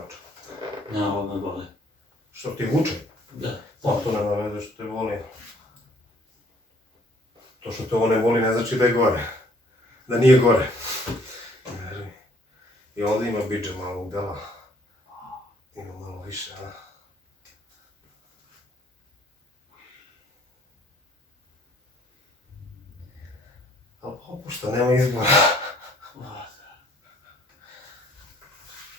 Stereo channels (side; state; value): both; normal; correlation 0.60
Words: Ne, ovo me boli. Što ti vuče? Da. Pa to nema veze što te boli. To što te ovo ne boli ne znači da je gore. Da nije gore. I ovdje ima biđe malo udela. Ima malo više, a? Ali popušta, nema izbora.